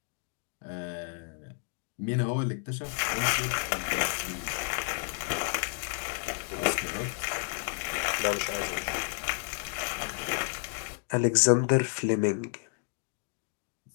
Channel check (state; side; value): silent; right; 57 dB below the other